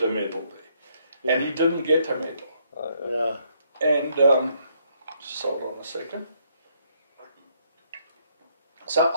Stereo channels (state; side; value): inverted; both; correlation -0.71